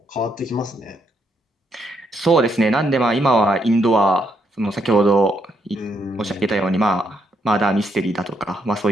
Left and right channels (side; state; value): both; normal; correlation 0.76